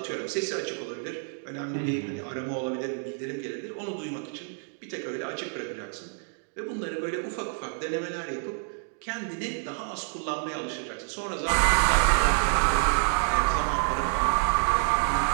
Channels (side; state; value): left; silent; 57 dB below the other